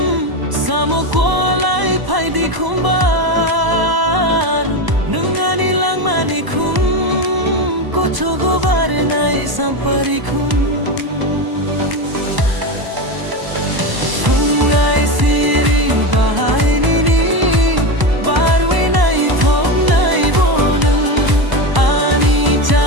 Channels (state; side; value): late; left; 1.0 ms